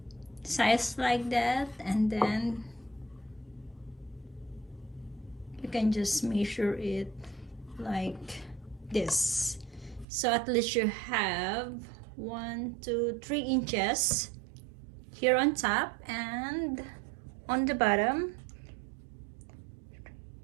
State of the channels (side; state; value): left; drops out; at 10.1 s